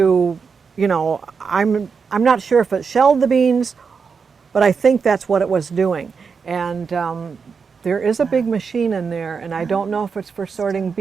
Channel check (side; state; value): left; quieter; 5.6 dB